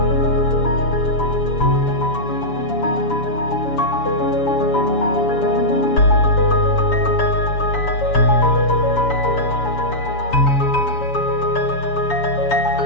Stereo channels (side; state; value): right; late; 7.0 ms